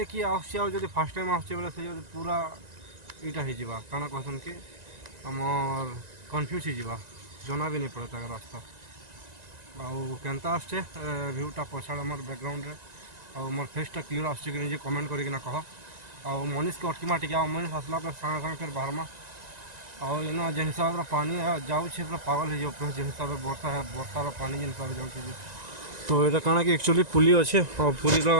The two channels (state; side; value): late; left; 1.9 ms